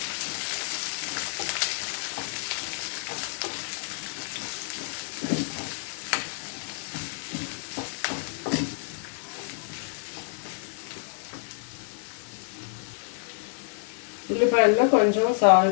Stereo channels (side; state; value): right; silent; 59 dB below the other